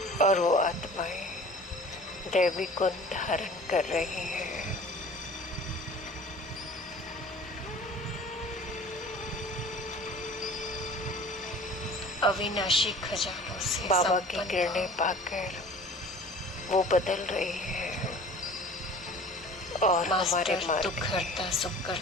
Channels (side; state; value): both; normal; correlation 0.44